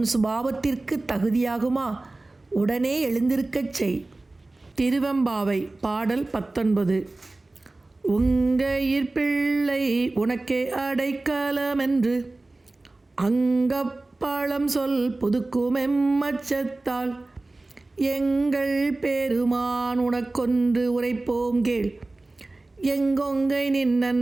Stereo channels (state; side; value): quieter; left; 3.0 dB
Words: சுபாவத்திற்கு தகுதியாகுமா? உடனே எழுந்திருக்கச் செய். திருவெம்பாவை. பாடல் 19. உங்கையிற் பிள்ளை உனக்கே அடைக்கலமென்று அங்கப்பழம் சொல் புதுக்குமெம்மச்சத்தால் எங்கள் பெருமான் உனக்கொன்று உரைப்போம் கேள். எங்கொங்கை நின்